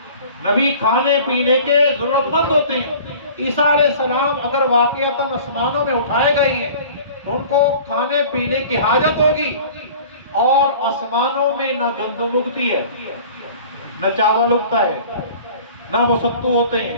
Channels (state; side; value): inverted; both; correlation -0.45